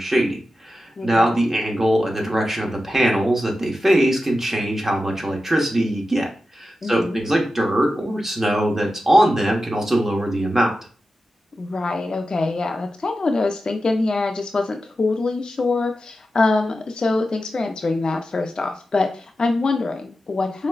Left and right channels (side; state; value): both; normal; correlation 0.92